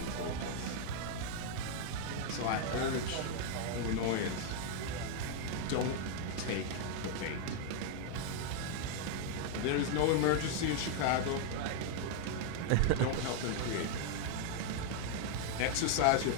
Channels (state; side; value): different; both; correlation 0.00